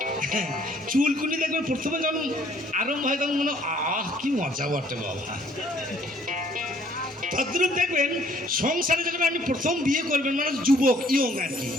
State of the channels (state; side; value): normal; both; correlation 0.60